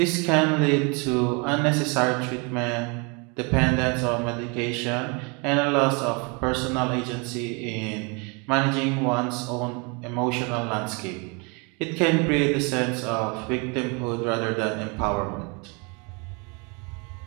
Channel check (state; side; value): quieter; left; 31.7 dB